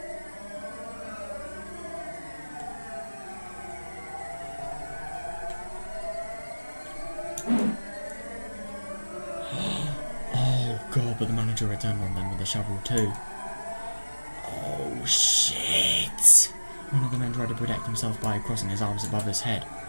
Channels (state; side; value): inverted; both; correlation -1.00